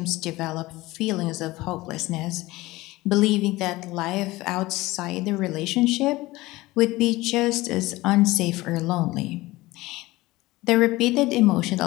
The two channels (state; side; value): quieter; right; 19.4 dB